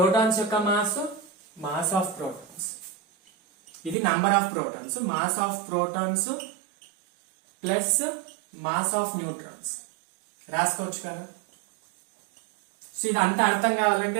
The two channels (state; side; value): drops out; left; at 4.0 s